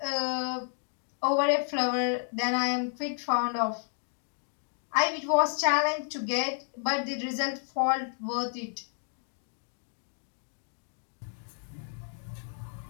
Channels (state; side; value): silent; right; 56 dB below the other